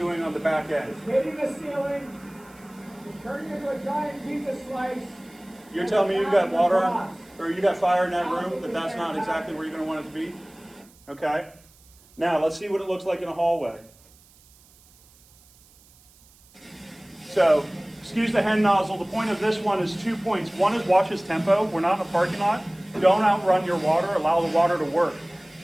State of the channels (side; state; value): right; noise; hiss, 28 dB below the sound